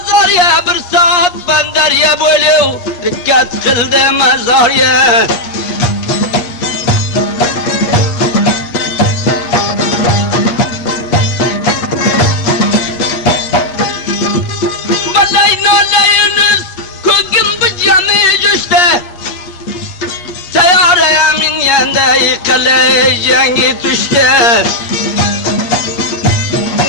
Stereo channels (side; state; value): right; late; 8.4 ms